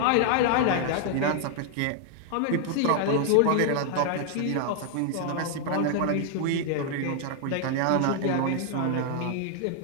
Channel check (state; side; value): different; both; correlation 0.00